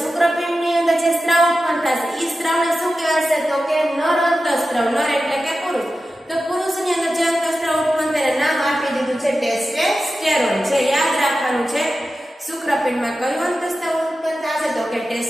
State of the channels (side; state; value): both; normal; correlation 0.93